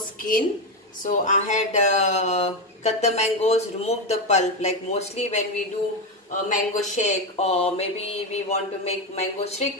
So I had cut the mangoes, remove the pulp, like mostly when we do a mango shake or maybe we want to make mango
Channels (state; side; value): normal; both; correlation 0.10